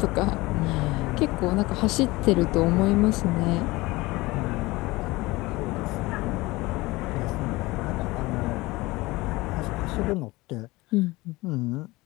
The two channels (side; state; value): right; quieter; 21.1 dB